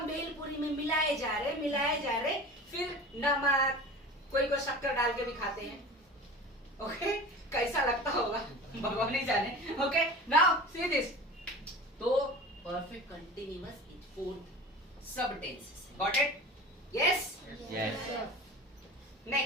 भेलपुरी में मिलाए जा रहे, मिलाए जा रहे। फिर नमक, कोई को शक्कर डाल के भी खाते हैं। ओके, कैसा लगता होगा भगवान ही जाने। Okay, now see this. तो परफेक्ट कंटिन्यूअस इज 4th सब tenses. Got it? Yes, Yes.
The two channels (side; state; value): both; normal; correlation 0.36